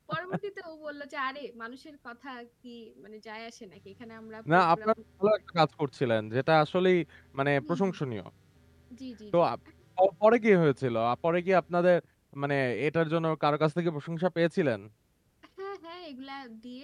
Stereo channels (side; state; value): both; identical; correlation 1.00